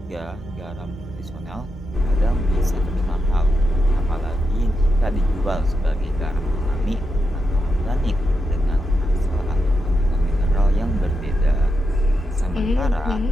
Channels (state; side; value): normal; both; correlation 0.86